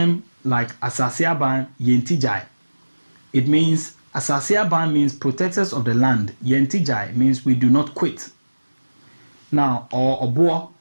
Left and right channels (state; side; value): inverted; both; correlation -1.00